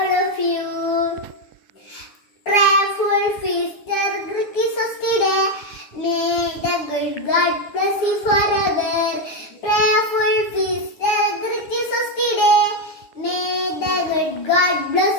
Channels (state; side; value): late; right; 9.7 ms